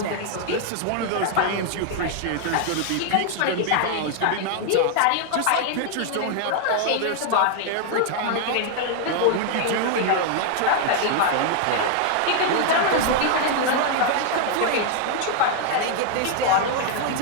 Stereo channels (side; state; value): both; different; correlation 0.00